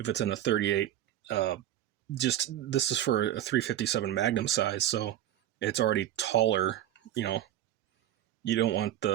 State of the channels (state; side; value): quieter; left; 12.3 dB